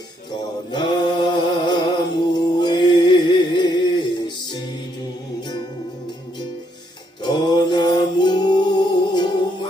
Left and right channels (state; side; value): normal; both; correlation 0.73